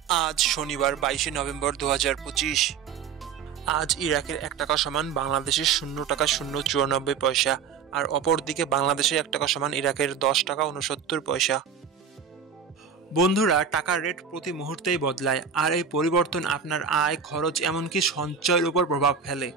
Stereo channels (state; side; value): quieter; left; 6.7 dB